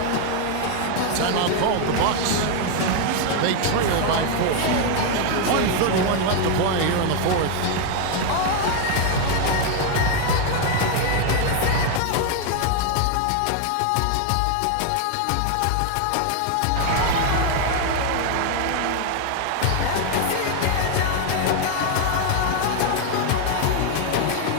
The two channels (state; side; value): different; both; correlation 0.01